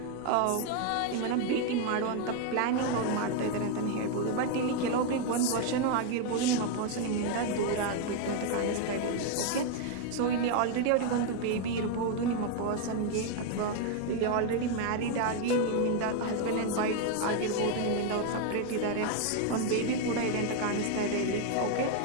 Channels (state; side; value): different; both; correlation 0.01